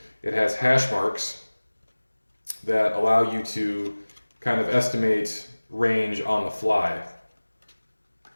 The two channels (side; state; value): both; inverted; correlation -1.00